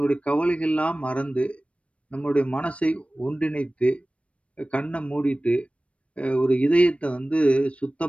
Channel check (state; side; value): late; right; 0.062 ms